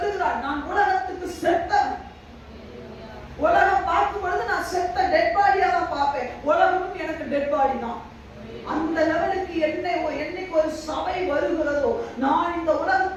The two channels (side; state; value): both; identical; correlation 1.00